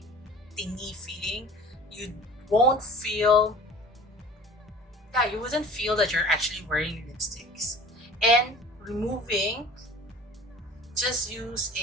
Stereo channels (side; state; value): both; normal; correlation 0.43